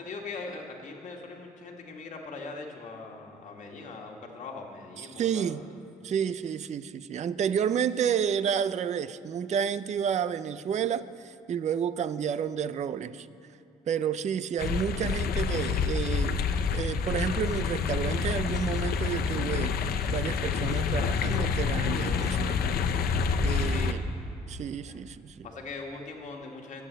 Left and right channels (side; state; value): both; normal; correlation 0.48